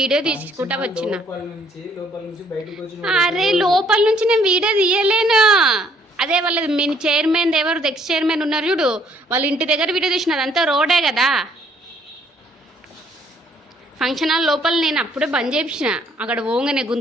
వీడియో తీసుకుంటా వచ్చిన. అరే లోపల నుంచి నేను వీడియో తీయలేను. అదే వాళ్ళది మీ చైర్మన్ ఎవరు ఎక్స్ చైర్మన్ ఉన్నారు చూడు, వాళ్ళ ఇంటి దగ్గర వీడియో తీసిన. అదంతా రోడే కదా. ఫంక్షన్ హాల్ లోపల నేను అప్పుడే బంద్ చేపించిన. అక్కడ పోగానే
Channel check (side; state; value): both; normal; correlation 0.64